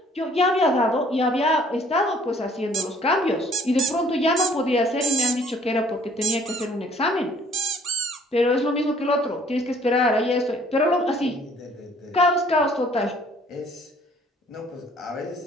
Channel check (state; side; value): normal; both; correlation 0.58